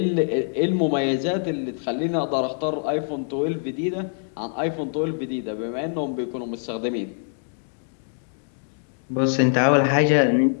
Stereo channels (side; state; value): right; silent; digital silence